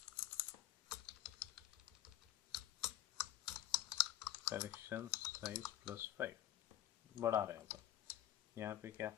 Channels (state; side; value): quieter; right; 13.0 dB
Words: collection size plus 5 बढ़ा रहे हैं. यहाँ पे क्या,